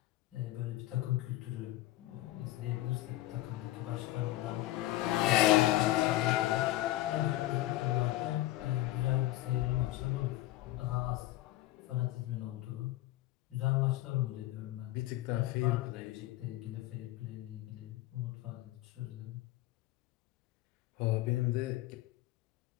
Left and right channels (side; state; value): right; quieter; 16.6 dB